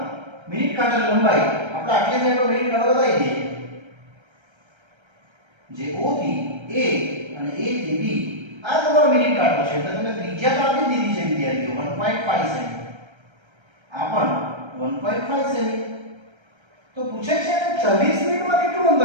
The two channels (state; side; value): late; left; 1.3 ms